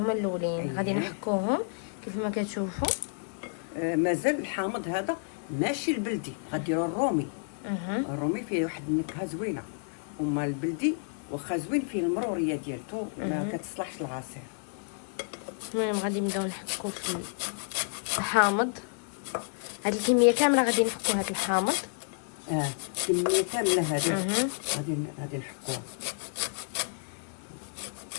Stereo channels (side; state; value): right; silent; digital silence